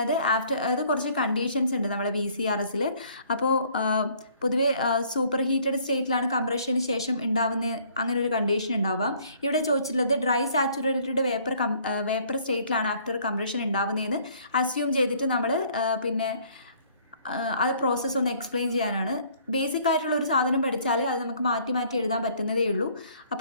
കുറച്ച് കണ്ടീഷൻസ് ഉണ്ട് നമ്മുടെ VCRSൽ. അപ്പോൾ പൊതുവേ സൂപ്പർ ഹീറ്റഡ് സ്റ്റേറ്റിലാണ് കംപ്രഷന് ശേഷം ഉണ്ടാവുന്ന അങ്ങനെ ഒരു കണ്ടീഷൻ ഉണ്ടാവാം. ഇവിടെ ചോദിച്ചിട്ടുള്ളത് ഡ്രൈ സാച്ചുറേറ്റഡ് വേപ്പർ സ്റ്റേറ്റിലാണ് ആഫ്റ്റർ കംപ്രഷൻ ഉണ്ടാവുന്നതെന്ന് അസ്യൂം ചെയ്തിട്ട് നമ്മൾ പിന്നെ അത് പ്രോസസ്സ് ഒന്ന് എക്സ്പ്ലെയിൻ ചെയ്യാനാണ്. ബേസിക് ആയിട്ടുള്ള ഒരു സാധനം പഠിച്ചാൽ അത് നമുക്ക് മാറ്റി മാറ്റി എഴുതാൻ പറ്റുന്നതേ ഉള്ളൂ.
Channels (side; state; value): both; inverted; correlation -0.60